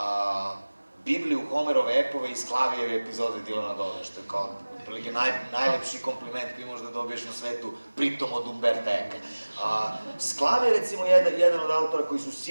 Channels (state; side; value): inverted; both; correlation -1.00